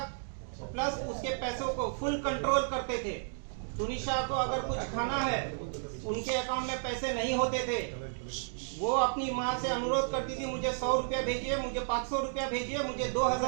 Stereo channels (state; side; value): silent; left; digital silence